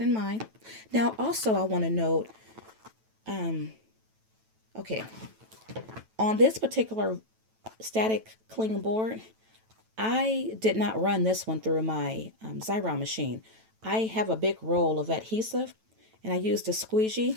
in mind. Now, also, I want to note, okay, on this particular static cling board, I did not run this one through my Xyron machine. I have a big roll of adhesive, and I used a squeegee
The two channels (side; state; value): left; late; 9.1 ms